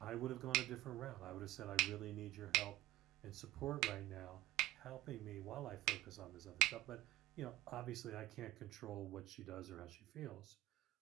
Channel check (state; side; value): quieter; left; 16.1 dB